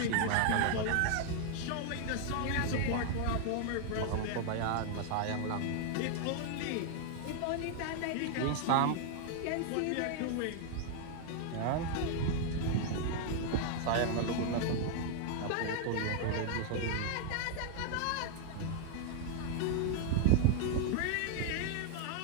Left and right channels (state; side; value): different; both; correlation 0.00